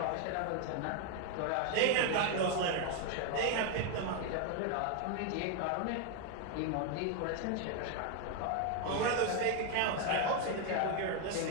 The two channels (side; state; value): both; different; correlation 0.01